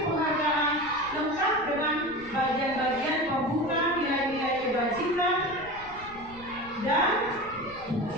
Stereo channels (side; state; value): left; noise; rumble, 19 dB below the sound